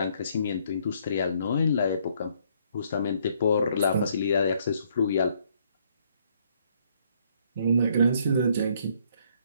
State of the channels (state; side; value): inverted; both; correlation -0.68